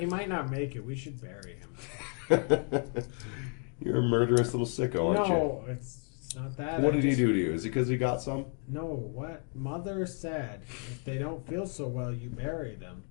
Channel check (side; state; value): right; quieter; 37.1 dB